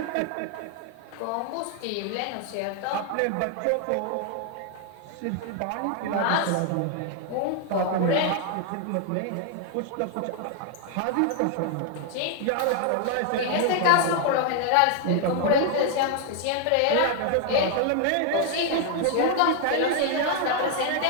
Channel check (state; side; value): different; both; correlation 0.00